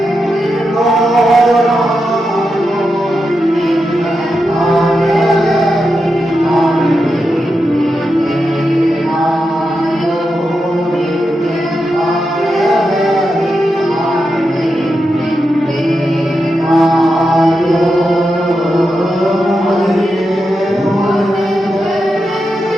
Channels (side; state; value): both; normal; correlation 0.87